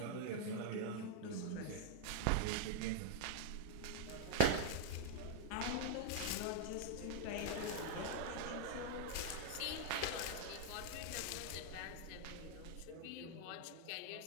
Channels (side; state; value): both; different; correlation -0.01